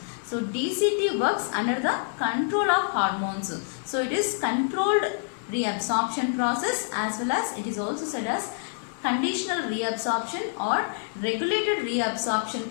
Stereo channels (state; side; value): silent; right; 60 dB below the other